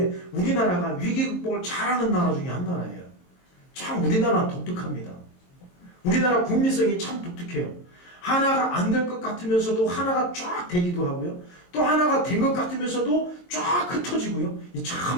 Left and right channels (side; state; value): right; late; 22 ms